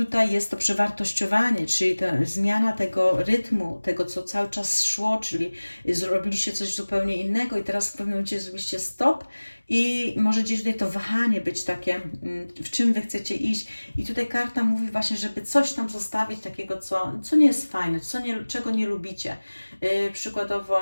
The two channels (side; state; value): both; inverted; correlation -1.00